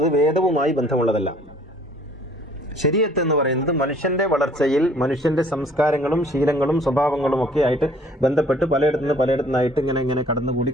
വേദവുമായി ബന്ധമുള്ളതല്ല. ശരീഅത്ത് എന്ന് പറയുന്നത് മനുഷ്യന്റെ വളർച്ചയിൽ മനുഷ്യന്റെ സംസ്കാരങ്ങളും ശീലങ്ങളും സ്വഭാവങ്ങളും ഒക്കെ ആയിട്ട് ബന്ധപ്പെട്ട് പലയിടത്തുനിന്നായിട്ട് ഇങ്ങനെ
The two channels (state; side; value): normal; both; correlation 0.56